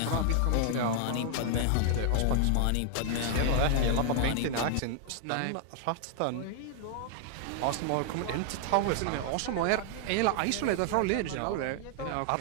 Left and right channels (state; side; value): different; both; correlation 0.00